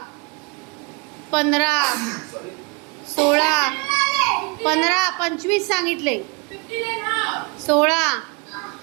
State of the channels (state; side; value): quieter; left; 30.8 dB